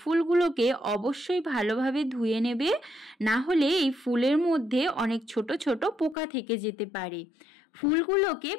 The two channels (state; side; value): drops out; right; at 6.2 s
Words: অবশ্যই ভালোভাবে ধুয়ে নেবে, না হলে এই ফুলের মধ্যে অনেক ছোট ছোট পোকা থেকে যেতে পারে। ফুলগুলোকে